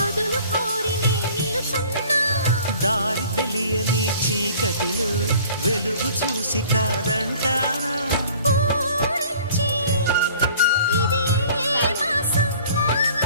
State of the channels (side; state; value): both; inverted; correlation -0.50